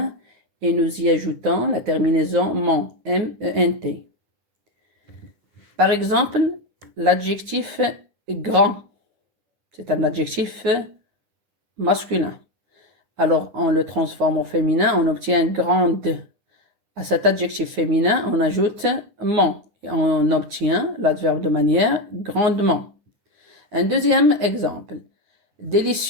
et nous y ajoutons la terminaison ment, M-E-N-T. Par exemple, l'adjectif grand, c'est un adjectif masculin. Alors, on le transforme au féminin, on obtient grande. À cet adjectif féminin, on ajoute ment et on obtient l'adverbe de manière grandement. Un deuxième exemple.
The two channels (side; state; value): left; late; 9.7 ms